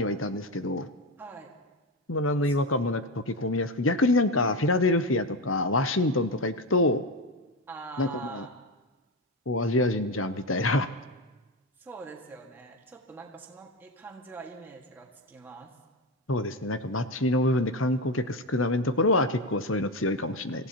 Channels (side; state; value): both; normal; correlation 0.15